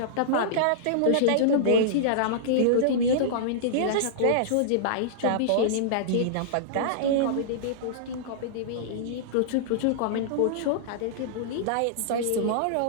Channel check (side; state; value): both; different; correlation -0.02